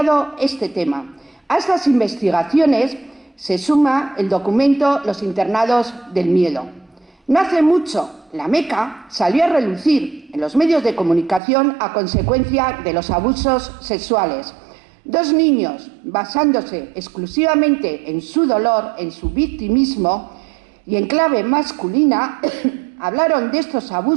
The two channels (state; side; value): drops out; left; at 11.4 s